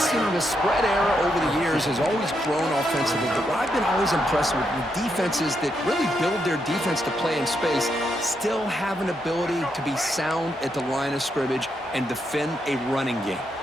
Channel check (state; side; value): normal; both; correlation 0.80